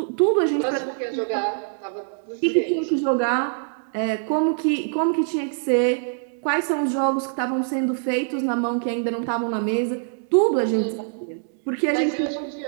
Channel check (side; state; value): left; silent; digital silence